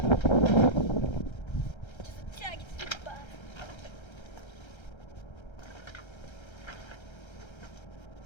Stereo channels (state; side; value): late; right; 1.3 ms